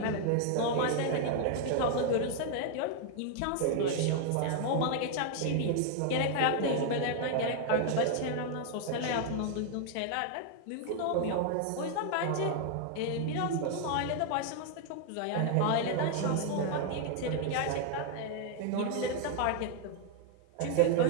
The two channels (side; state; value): both; different; correlation 0.00